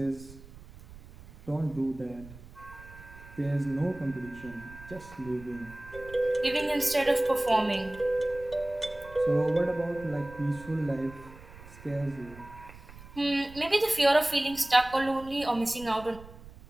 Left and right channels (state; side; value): noise; right; rumble, 18 dB below the sound